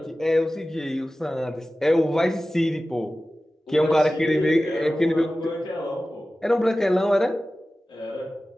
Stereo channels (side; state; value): both; normal; correlation 0.95